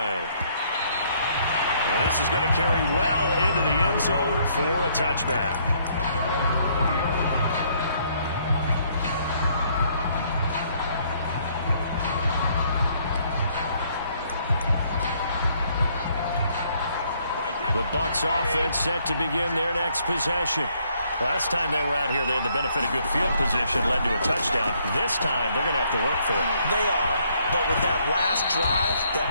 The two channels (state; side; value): inverted; both; correlation -0.67